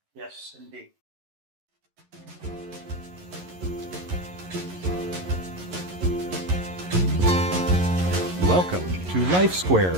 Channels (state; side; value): late; left; 11 ms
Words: Yes, indeed. Welcome to Life